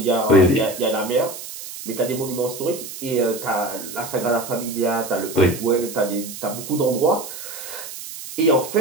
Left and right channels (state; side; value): noise; right; hiss, 11 dB below the sound